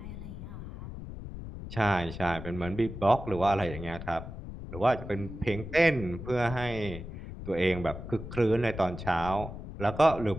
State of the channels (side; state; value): left; noise; rumble, 10 dB below the sound